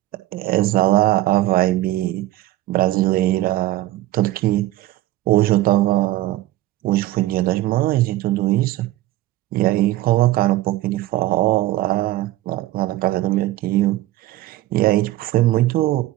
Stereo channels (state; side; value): quieter; left; 15.8 dB